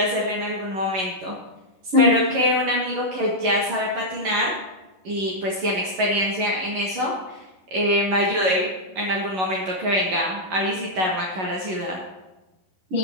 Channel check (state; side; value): late; left; 11 ms